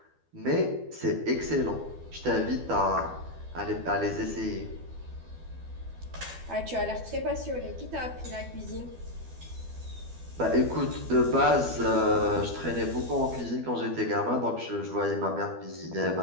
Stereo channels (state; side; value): late; left; 12 ms